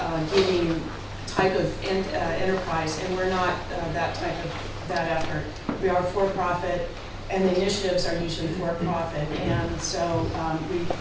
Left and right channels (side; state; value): both; identical; correlation 1.00